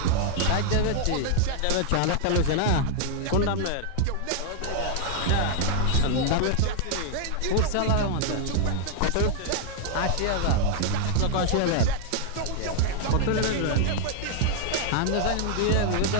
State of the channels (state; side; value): different; both; correlation 0.00